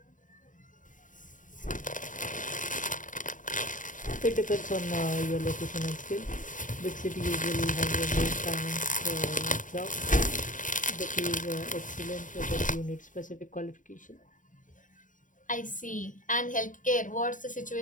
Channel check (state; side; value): late; right; 0.38 ms